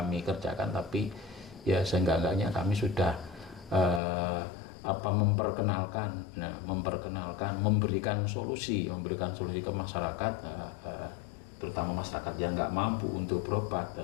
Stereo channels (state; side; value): drops out; right; at 4.0 s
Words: kerjakan, tapi ya seenggak-enggaknya kami sudah memperkenalkan, memberikan solusi ke masyarakat, terutama masyarakat yang nggak mampu untuk berobat,